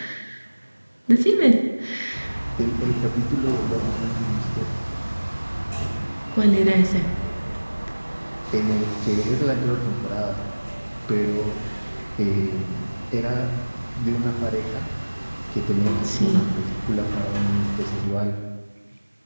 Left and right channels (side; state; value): both; inverted; correlation -1.00